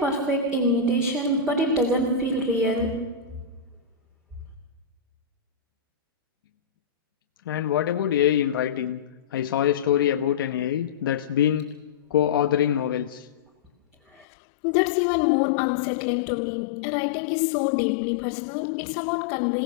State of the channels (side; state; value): right; drops out; at 14.2 s